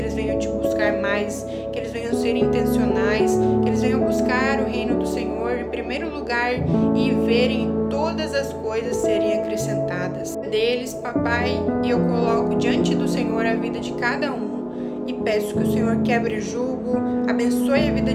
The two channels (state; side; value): identical; both; correlation 1.00